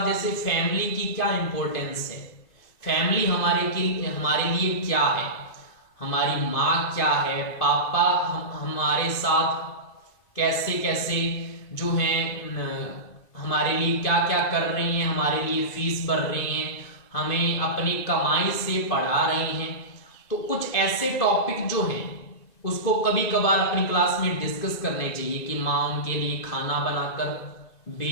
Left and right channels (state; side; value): late; right; 2.5 ms